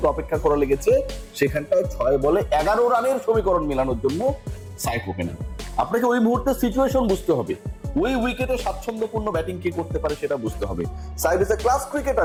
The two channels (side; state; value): both; identical; correlation 1.00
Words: অপেক্ষা করা লেগেছে। সেখানটায় 6 বলে 11 রানের সমীকরণ মেলানোর জন্য সাইফ ওপেনার। আপনাকে ওই মুহূর্তে সিচুয়েশন বুঝতে হবে, ওই উইকেটে স্বাচ্ছন্দ্যপূর্ণ ব্যাটিং কে করতে পারে সেটা বুঝতে হবে। Saif is a class